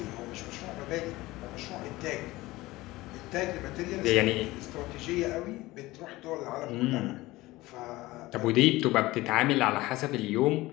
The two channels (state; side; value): quieter; right; 19.1 dB